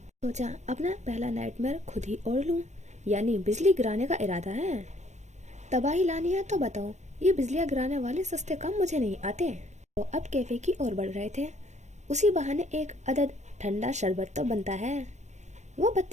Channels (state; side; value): late; left; 0.34 ms